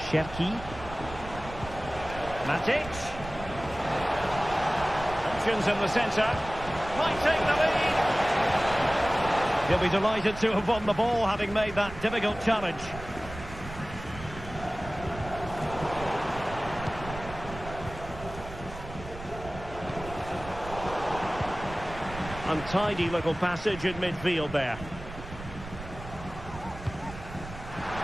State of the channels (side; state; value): right; noise; rumble, 13 dB below the sound